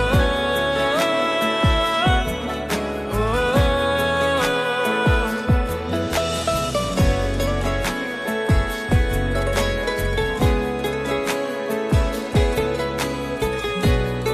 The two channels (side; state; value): both; identical; correlation 1.00